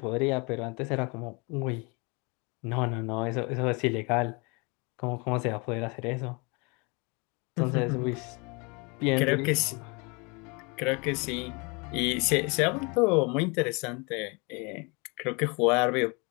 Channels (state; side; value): quieter; right; 30.2 dB